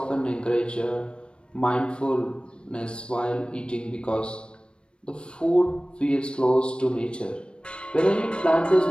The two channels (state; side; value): late; right; 0.056 ms